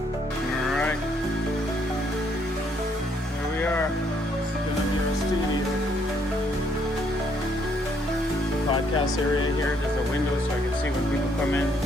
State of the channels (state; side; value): normal; both; correlation 0.69